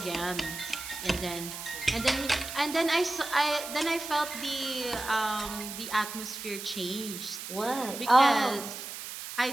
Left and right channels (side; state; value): right; noise; hiss, 9 dB below the sound